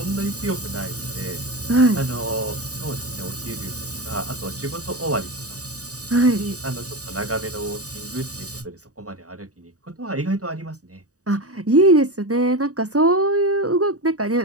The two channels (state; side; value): late; left; 0.66 ms